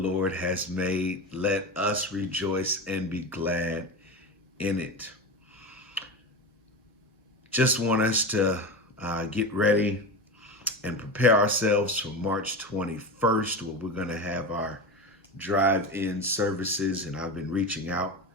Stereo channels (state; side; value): normal; both; correlation 0.23